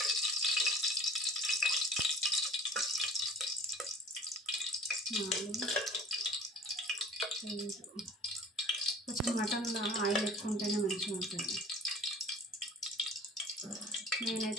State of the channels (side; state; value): both; normal; correlation 0.44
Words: కొంచెం మటన్లో ఆయిల్ ఎక్కువ ఉంటేనే మంచిగా ఉంటుంది.